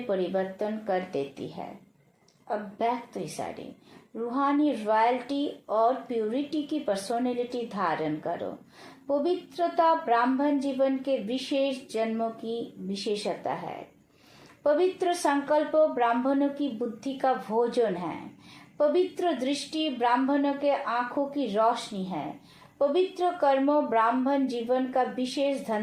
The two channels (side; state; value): both; identical; correlation 1.00